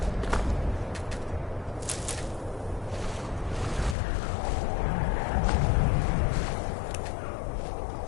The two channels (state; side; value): drops out; right; at 4.0 s